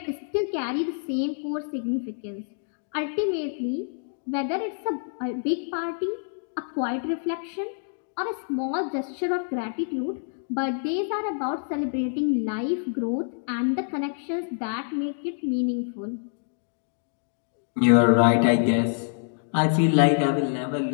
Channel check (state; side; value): silent; right; digital silence